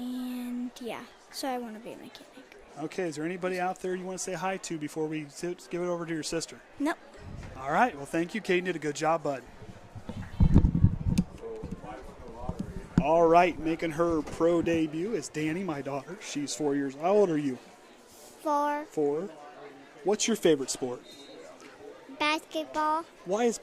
yeah, so I want to be a mechanic. Okay, is there anybody out there you want to say hi to before we give it over to your sister? Nope. All right, well, thank you, Caden. Did a good job, bud. All right, making her pro debut is Danny, my daughter. She's 4 years. How old are you? 4. 4. What's your favorite sport? Basketball Why is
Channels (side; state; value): both; identical; correlation 1.00